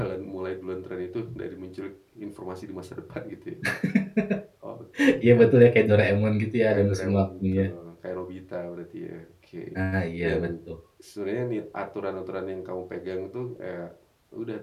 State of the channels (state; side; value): identical; both; correlation 1.00